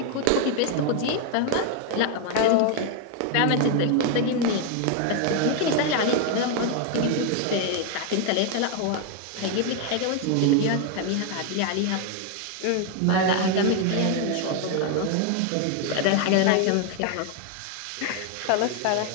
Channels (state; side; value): different; both; correlation 0.01